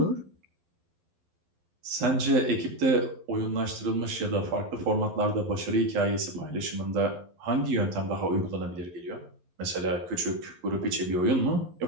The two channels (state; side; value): late; left; 11 ms